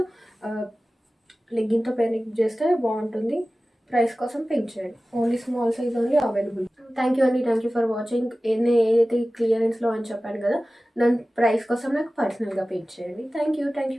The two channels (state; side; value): normal; both; correlation 0.96